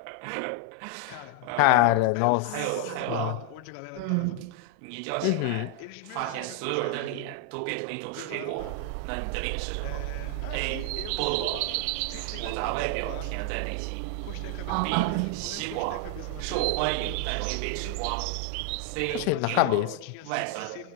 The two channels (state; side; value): different; both; correlation 0.00